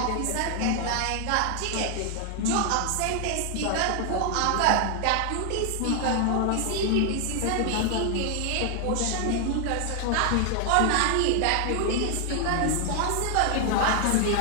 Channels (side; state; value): both; different; correlation 0.00